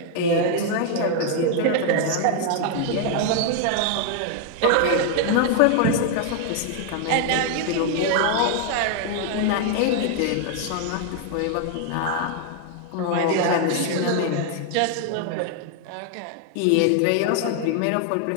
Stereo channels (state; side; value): different; both; correlation 0.00